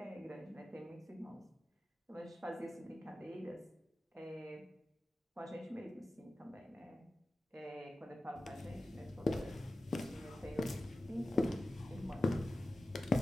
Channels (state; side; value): normal; both; correlation 0.95